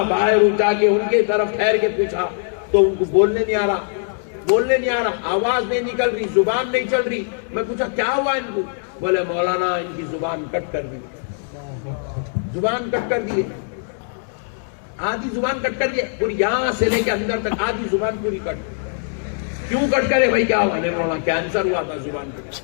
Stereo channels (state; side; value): silent; right; digital silence